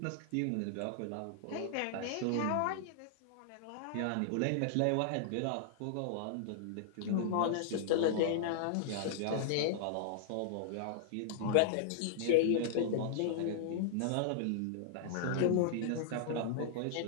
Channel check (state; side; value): different; both; correlation -0.01